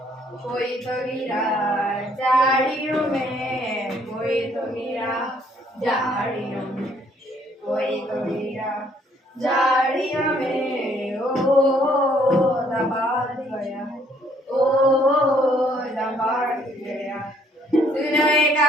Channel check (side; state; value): both; normal; correlation 0.65